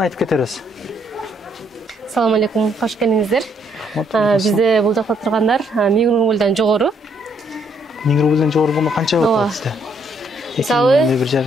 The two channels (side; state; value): both; normal; correlation 0.70